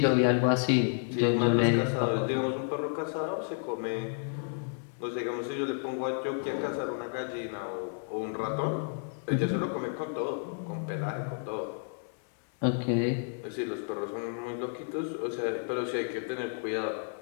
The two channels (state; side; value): silent; right; 57 dB below the other